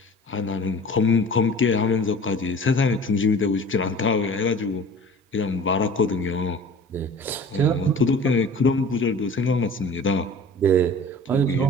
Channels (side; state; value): both; normal; correlation 0.43